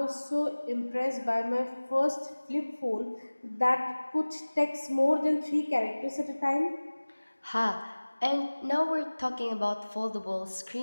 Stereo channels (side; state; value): both; inverted; correlation -1.00